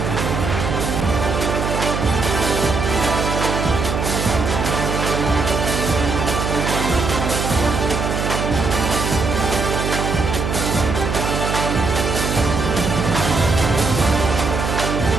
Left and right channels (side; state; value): right; noise; hum, 2 dB below the sound